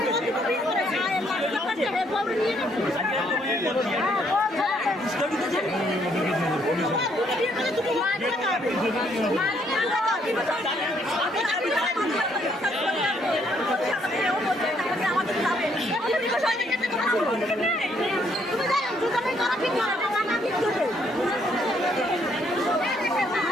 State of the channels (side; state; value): both; normal; correlation 0.69